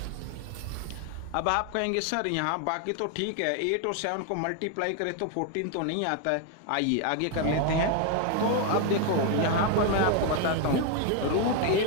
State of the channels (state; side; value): different; both; correlation 0.00